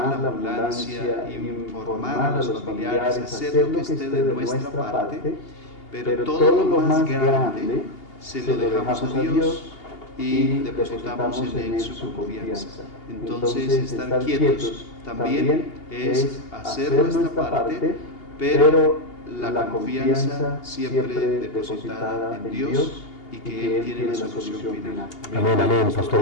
a la ambulancia, informar a los familiares, hacer lo que esté de nuestra parte, pero todo lo más grande se lo dejamos a Dios y depositamos en Él su confianza. Entonces, estar quietos también es hacer nuestra parte, pero la confianza siempre depositada en Dios, y que Él tiene la solución final. Amén, amén,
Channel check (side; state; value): right; late; 2.8 ms